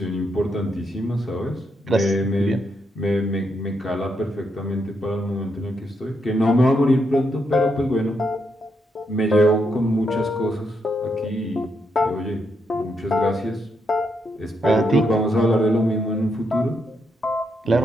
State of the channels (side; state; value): both; normal; correlation 0.80